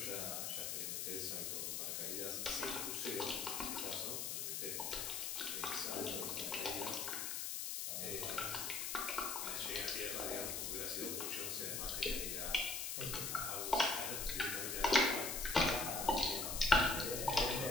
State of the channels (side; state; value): left; noise; hiss, 2 dB below the sound